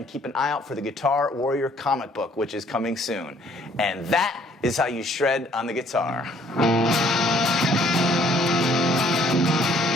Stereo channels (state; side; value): normal; both; correlation 0.62